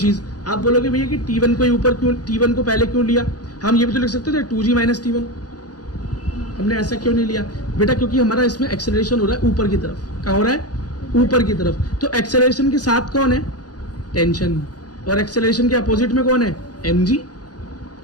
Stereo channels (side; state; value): right; late; 0.69 ms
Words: आप बोलोगे भैया कि T1 को ऊपर क्यों, T1 को पहले क्यों लिया, हम ये भी तो लिख सकते थे 2g माइनस T1, हमने ऐसा क्यों नहीं लिया बेटा, क्योंकि हमारा इसमें एक्सेलरेशन हो रहा है ऊपर की तरफ, क्या हो रहा है ऊपर की तरफ, तो एक्सेलरेशन के साथ कौन है टेंशन, और एक्सेलरेशन के अपोजिट में कौन है mg,